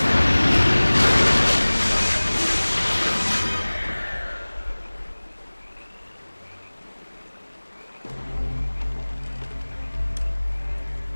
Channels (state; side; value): inverted; both; correlation -1.00